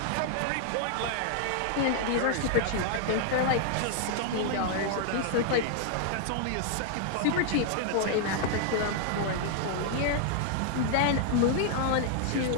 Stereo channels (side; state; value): both; different; correlation 0.00